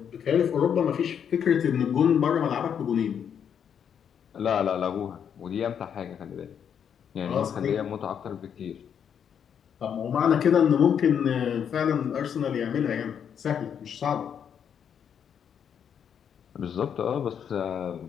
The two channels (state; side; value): quieter; right; 8.1 dB